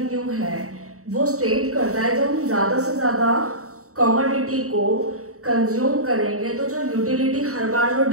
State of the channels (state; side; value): late; left; 0.64 ms